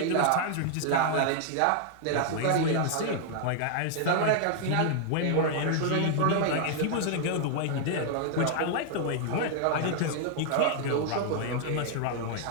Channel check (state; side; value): different; both; correlation 0.00